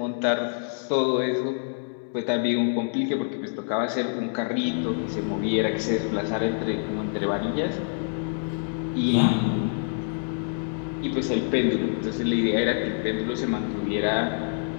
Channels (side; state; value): right; silent; digital silence